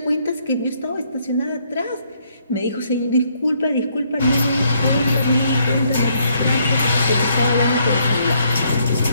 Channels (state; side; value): inverted; both; correlation -0.70